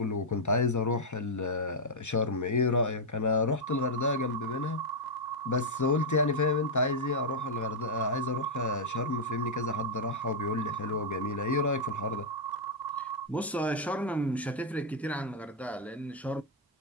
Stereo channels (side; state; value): both; normal; correlation -0.03